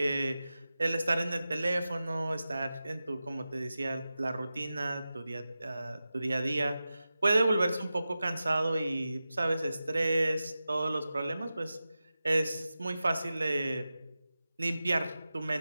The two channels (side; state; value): both; inverted; correlation -0.94